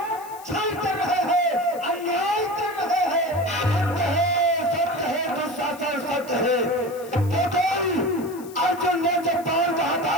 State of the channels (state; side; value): noise; left; hiss, 20 dB below the sound